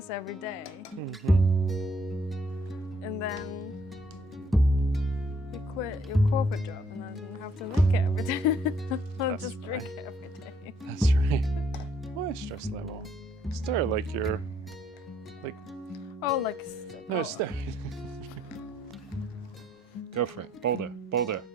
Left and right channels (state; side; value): normal; both; correlation 0.66